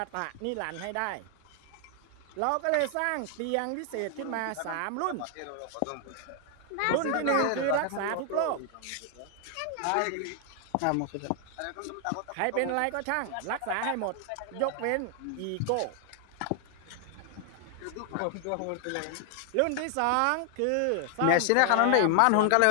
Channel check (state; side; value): different; both; correlation 0.00